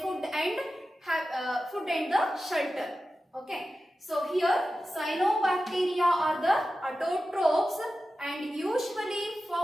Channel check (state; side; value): normal; both; correlation 0.93